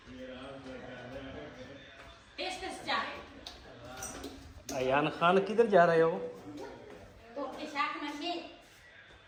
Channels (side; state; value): both; identical; correlation 1.00